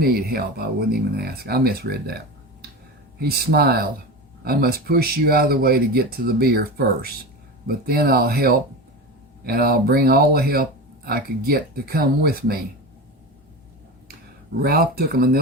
help, I wouldn't even ask. I misread that. He smiled. I must push you out of the way to get to the beer first, but then I'll help, and I'll bring all the help I could get to come with me. Ralph took a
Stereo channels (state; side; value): normal; both; correlation 0.26